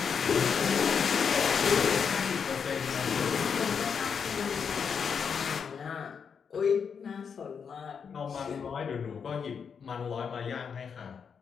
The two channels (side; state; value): right; quieter; 6.5 dB